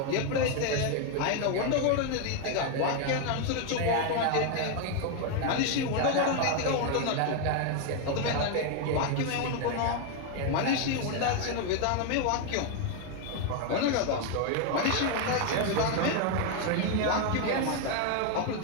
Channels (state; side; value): different; both; correlation 0.01